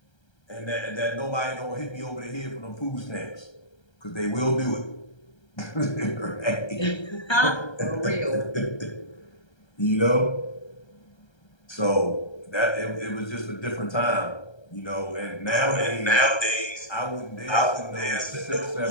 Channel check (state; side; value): late; right; 1.3 ms